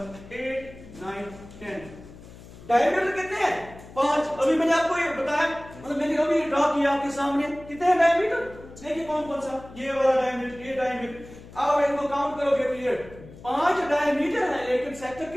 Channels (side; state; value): left; noise; hum, 18 dB below the sound